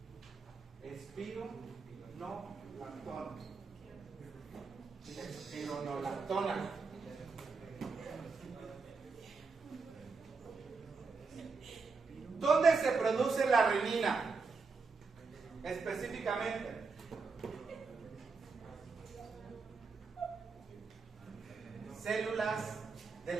Espironolactona. Espironolactona. ¿Dónde se produce la renina? Específicamente. Células de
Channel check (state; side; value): quieter; left; 4.6 dB